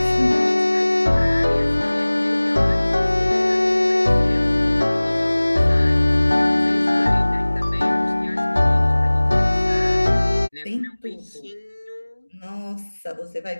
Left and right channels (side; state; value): both; inverted; correlation -1.00